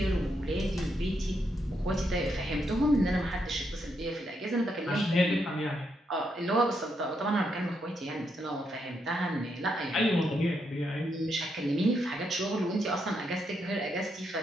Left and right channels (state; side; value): normal; both; correlation 0.79